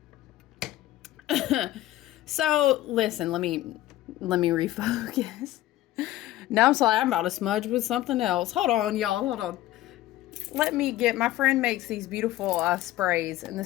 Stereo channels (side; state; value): right; quieter; 15.3 dB